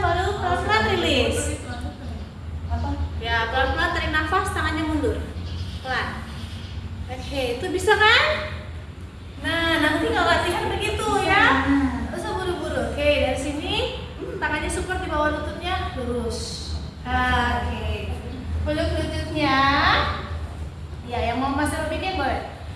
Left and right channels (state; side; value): identical; both; correlation 1.00